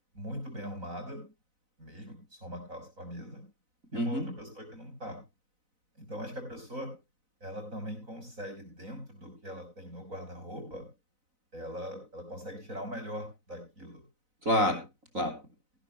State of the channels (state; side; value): late; left; 4.0 ms